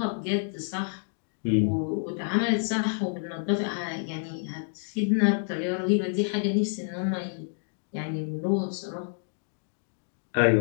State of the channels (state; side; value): silent; right; digital silence